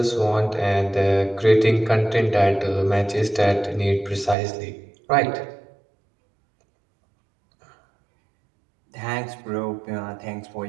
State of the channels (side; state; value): left; drops out; at 4.4 s